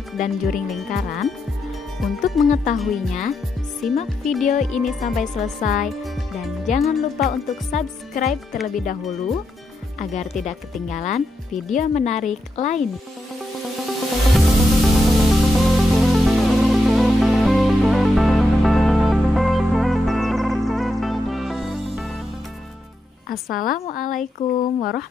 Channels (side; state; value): both; normal; correlation 0.84